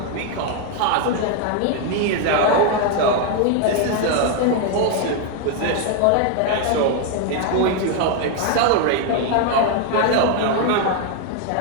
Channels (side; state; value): both; different; correlation 0.01